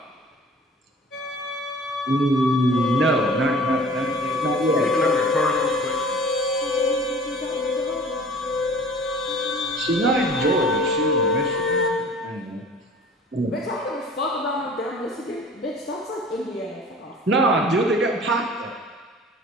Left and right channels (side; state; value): both; normal; correlation 0.46